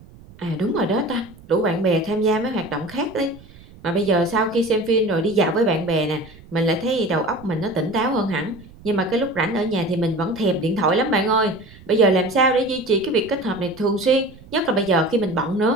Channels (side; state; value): right; noise; rumble, 22 dB below the sound